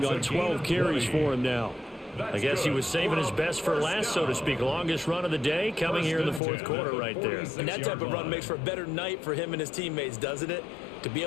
on 12 carries for him now. I guess he was saving his best for last, so to speak. Longest run of the day coming here in the fourth quarter right there. And that type of run makes for a better night for him and his teammates, doesn't it? To be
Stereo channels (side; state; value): right; drops out; at 6.4 s